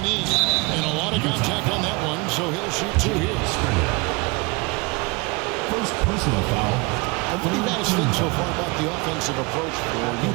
And a lot of contact on that one, so he'll shoot 2 here. First personal foul. What do you guys think so far about the offensive approach for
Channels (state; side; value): quieter; left; 26.7 dB